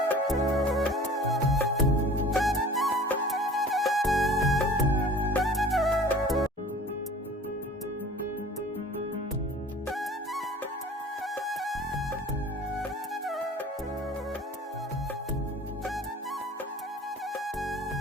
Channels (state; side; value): normal; both; correlation 0.44